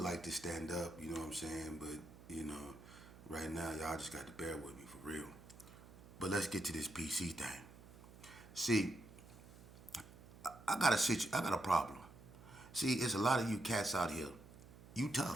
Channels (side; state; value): right; noise; hum, 19 dB below the sound